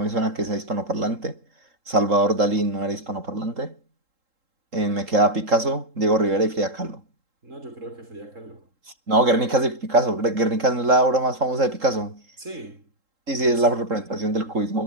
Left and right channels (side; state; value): left; late; 3.7 ms